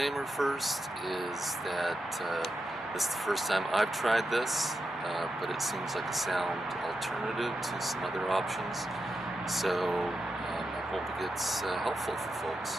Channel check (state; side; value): normal; both; correlation 0.87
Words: first is that this is the first time I've tried this, but it seems like a sound alternative to some other options, so I hope it gets helpful for